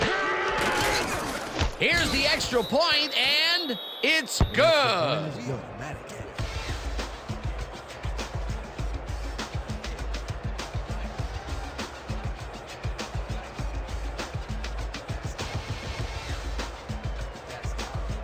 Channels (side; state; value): both; identical; correlation 1.00